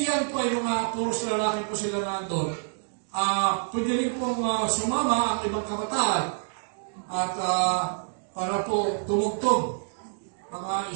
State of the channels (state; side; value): silent; left; digital silence